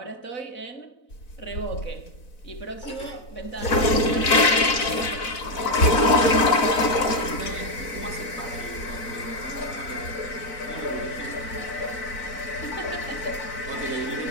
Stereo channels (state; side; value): late; right; 4.0 ms